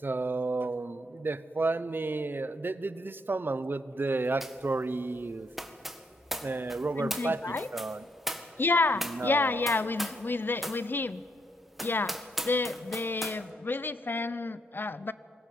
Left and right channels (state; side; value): normal; both; correlation 0.75